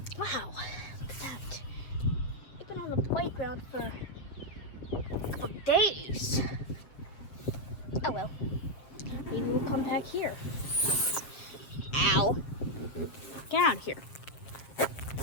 Wow, look at that. I've been on the playground for a couple of days. Oh well, maybe we'll come back here. Ow. Get out of here.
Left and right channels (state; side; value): late; right; 7.3 ms